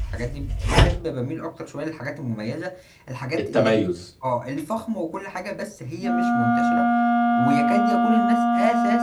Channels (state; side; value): identical; both; correlation 1.00